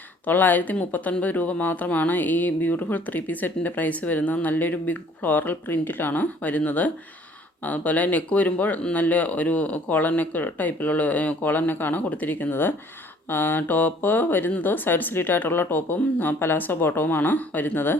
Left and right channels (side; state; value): both; normal; correlation 0.56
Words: 939 രൂപ മാത്രമാണ് ഈ ബ്യൂട്ടിഫുൾ 3 പീസ് സെറ്റിൻ്റെ പ്രൈസ് വരുന്നത്. നല്ലൊരു ബിഗ് ഫ്ലോറൽ പ്രിൻറ്റിലാണ് വരുന്നത്. അതുപോലെ നെക്ക് വരുമ്പോൾ നല്ല ഒരു കോളർ നെക്ക് ടൈപ്പിലുള്ള കോളർ നെക്കാണ് കൊടുത്തിരിക്കുന്നത്. ടോപ്പ് വരുന്നത് സൈഡ് സ്ലിറ്റ് ആയിട്ടുള്ള ടോപ്പും പലാസോ ബോട്ടവുമാണ് വരുന്നത്.